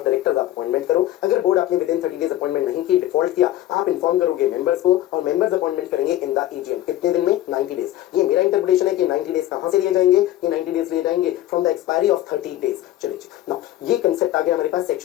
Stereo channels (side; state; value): right; quieter; 14.0 dB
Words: डायरेक्टर्स आप अपॉइंटमेंट करो। अगर बोर्ड आपने विद इन 30 डेज अपॉइंटमेंट नहीं की, डिफॉल्ट किया, आप इन्फॉर्म करोगे मेंबर्स को और मेंबर्स अपॉइंटमेंट करेंगे इन द एजीएम। कितने दिन में, 90 डेज। ये मेरा इंटरप्रिटेशन है कि 90 डेज कहां से लिए जाएंगे, ये 90 डेज लिए जाएंगे from the expiry of 30 days. चलिए नाउ ये कंसेप्ट आ गया हमारे पास